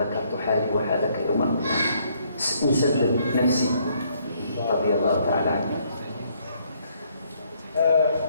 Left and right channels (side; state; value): both; inverted; correlation -0.68